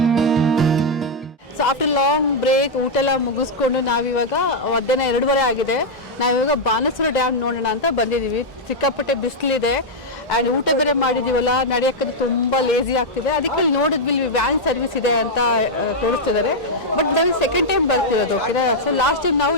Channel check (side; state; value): both; normal; correlation -0.03